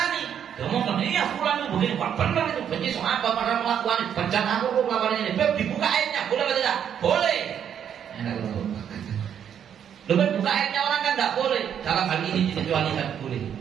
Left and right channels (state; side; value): quieter; left; 8.8 dB